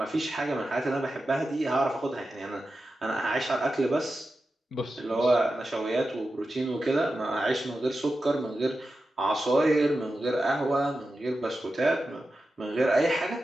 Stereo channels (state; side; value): normal; both; correlation 0.91